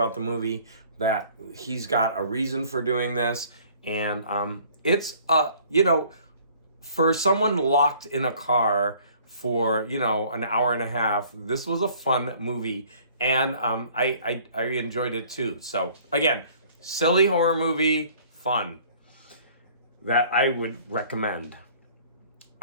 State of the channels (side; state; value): both; inverted; correlation -0.54